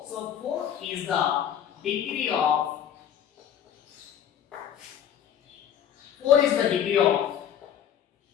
So, 4 is the degree of 4 is the degree of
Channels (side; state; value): right; quieter; 9.6 dB